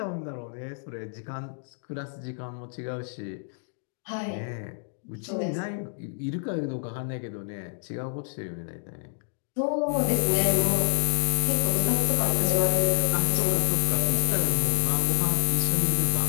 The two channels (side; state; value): right; silent; digital silence